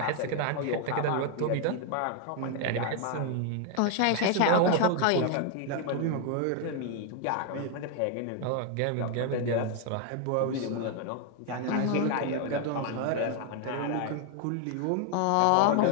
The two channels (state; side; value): different; both; correlation 0.00